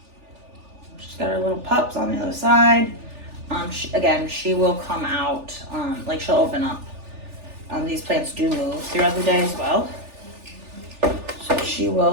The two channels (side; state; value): left; late; 3.4 ms